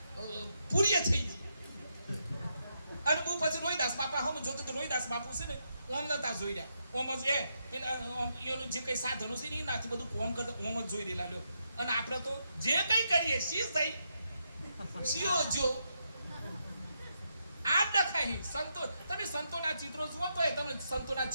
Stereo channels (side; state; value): both; inverted; correlation -0.81